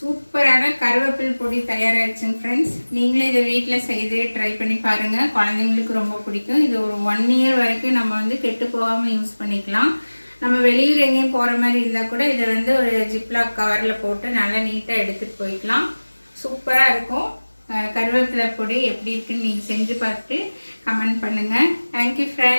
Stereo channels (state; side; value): inverted; both; correlation -1.00